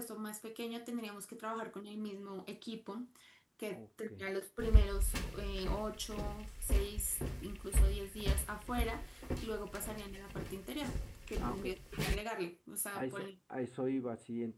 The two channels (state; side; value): identical; both; correlation 1.00